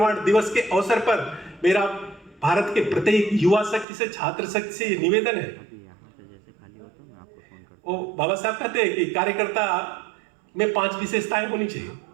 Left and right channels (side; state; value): left; drops out; at 3.9 s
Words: दिवस के अवसर पर मेरा भारत के प्रत्येक युवा शक्ति से, छात्र शक्ति से ये निवेदन है। वो बाबा साहब कहते हैं कि कार्यकर्ता में 5 विशेषताएं होनी चाहिए।